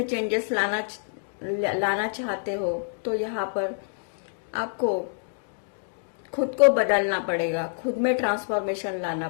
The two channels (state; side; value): silent; right; digital silence